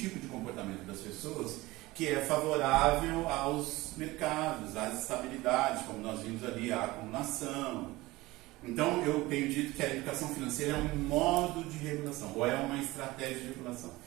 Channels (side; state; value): left; quieter; 19.9 dB